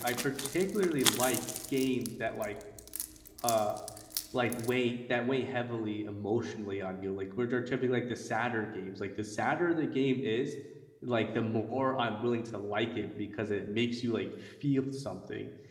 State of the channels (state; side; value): identical; both; correlation 1.00